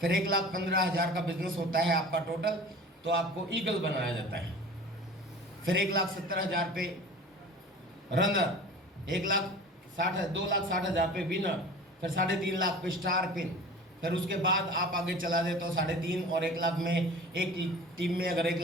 1,15,000 का बिजनेस होता है आपका टोटल, तो आपको ईगल बनाया जाता है। फिर 1,70,000 पे रनर, 2,60,000 पे विनर, फिर 3.5 लाख पे स्टार पिन। फिर उसके बाद आप आगे चला जाए तो 3.5 और 1 लाख में एक टीम में अगर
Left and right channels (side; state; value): both; normal; correlation 0.40